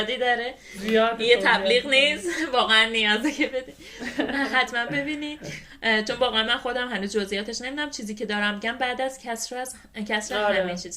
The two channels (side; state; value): both; identical; correlation 1.00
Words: داره، یه تبلیغ نیست، واقعا نیازه که بدین. حتما ببینید چون واقعا من خودم هنوز جزئیاتش نمیدونم. چیزی که دارم میگم بعد از کسر همه